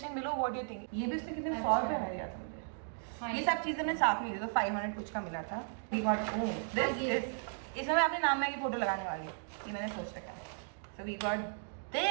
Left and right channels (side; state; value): left; silent; digital silence